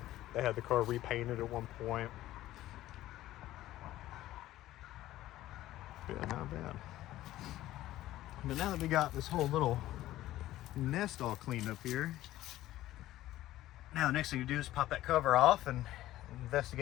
They had the car repainted at one point. Yeah, not bad. But now that we got this whole little nest all cleaned up here, now the next thing to do is pop that cover off and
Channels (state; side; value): quieter; right; 14.9 dB